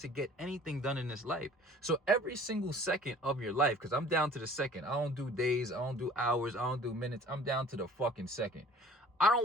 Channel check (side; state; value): both; normal; correlation 0.50